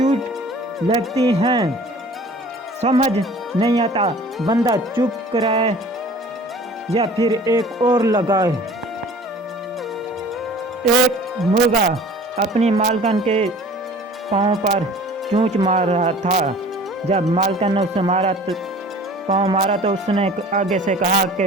लगती हैं, समझ नहीं आता बंदा चुप कराए या फिर एक और लगाए। एक मुर्गा अपनी मालकन के पाँव पर चोंच मार रहा था। जब मालकन ने उसे पाँव मारा तो उसने आगे से कहा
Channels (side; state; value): both; normal; correlation 0.46